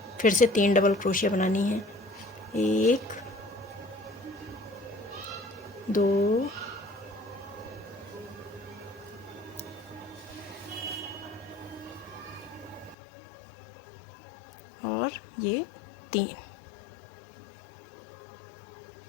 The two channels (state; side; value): drops out; right; at 13.0 s